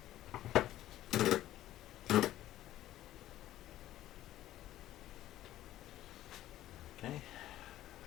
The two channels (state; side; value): quieter; right; 13.9 dB